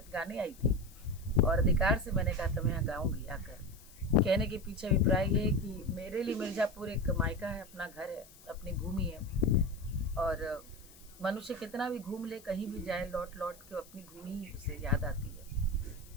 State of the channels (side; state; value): left; noise; hiss, 23 dB below the sound